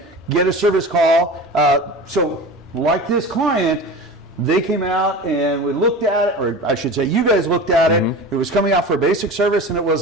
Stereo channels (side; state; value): both; normal; correlation 0.33